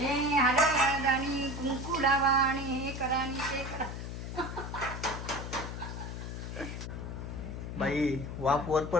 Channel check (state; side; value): noise; left; hum, 7 dB below the sound